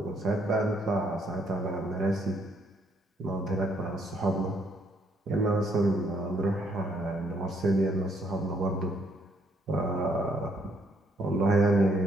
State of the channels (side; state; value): both; normal; correlation 0.70